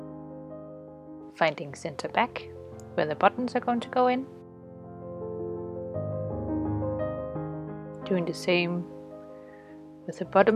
finding center back where the buttons are going to go in, doing the same with the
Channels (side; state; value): both; identical; correlation 1.00